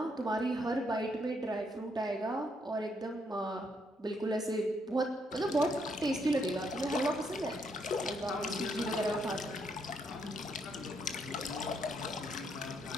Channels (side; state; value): both; normal; correlation 0.74